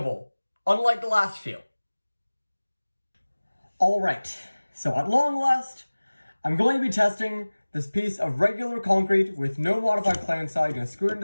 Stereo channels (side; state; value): both; inverted; correlation -1.00